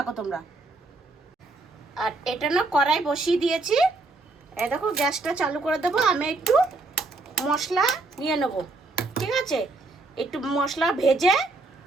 তোমরা। আর এটা না কড়াই বসিয়ে দিয়েছি। এই দেখো, গ্যাসটা চালু করে দেবো। আমি একটু মশলা নিয়ে নেব, ঠিক আছে? একটু মশলা ভেজে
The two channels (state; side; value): quieter; left; 3.3 dB